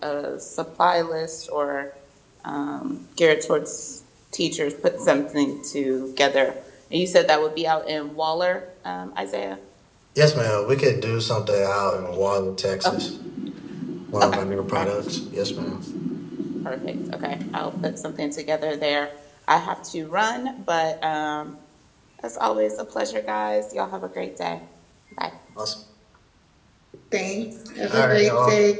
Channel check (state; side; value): identical; both; correlation 1.00